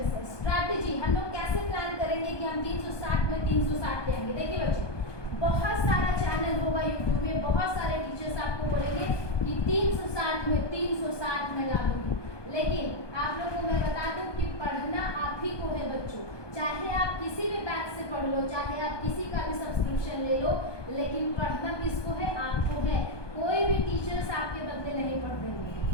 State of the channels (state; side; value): late; right; 1.2 ms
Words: है, स्ट्रैटेजी हम लोग कैसे प्लान करेंगे कि हम 360 में 360 ले आएंगे। देखिए बच्चों, बहुत सारा चैनल होगा यूट्यूब में, बहुत सारे टीचर्स आपको बोलेंगे कि 360 में 360 में ला दूंगी, लेकिन आप लोगों को मैं बता दूं कि पढ़ना आप ही को है बच्चों। चाहे आप किसी भी बैच से पढ़ लो, चाहे आप किसी का भी सब्सक्रिप्शन ले लो, लेकिन पढ़ना किसको है, आपको है। कोई भी टीचर्स आपके बदले नहीं पढ़ देंगे।